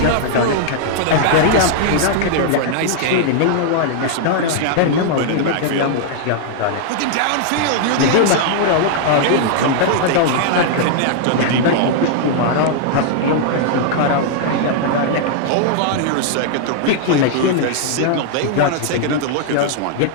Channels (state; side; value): different; both; correlation -0.01